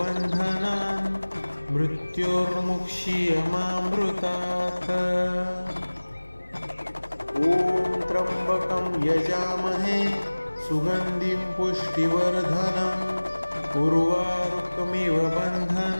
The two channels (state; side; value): inverted; both; correlation -1.00